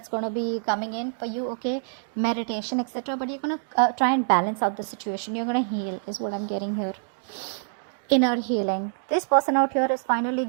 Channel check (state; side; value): silent; left; digital silence